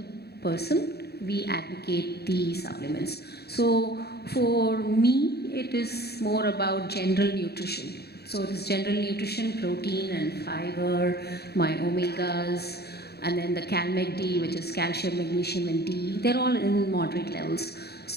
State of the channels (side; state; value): right; late; 0.47 ms